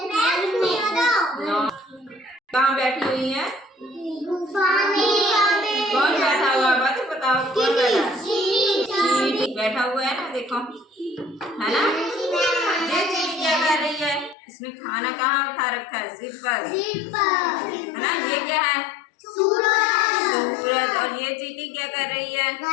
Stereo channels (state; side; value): drops out; right; at 14.4 s